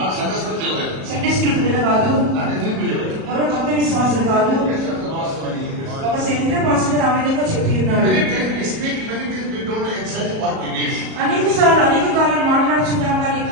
సండే స్కూల్ పిల్లలు కాదు, ఎవరు కొత్త విశ్వాసులు కాదు, ఒక సెంటర్ పాస్టర్ ఆ విధంగా చెప్పి ఉన్నాడు. అనేక సార్లు అనేక కాలాలు మాట్లాడుచున్నాం కానీ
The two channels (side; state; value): left; late; 37 ms